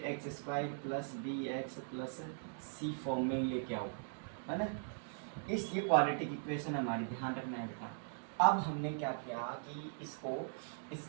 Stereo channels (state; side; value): silent; left; digital silence